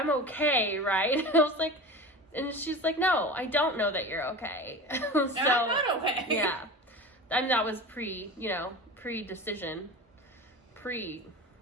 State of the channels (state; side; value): normal; both; correlation 0.32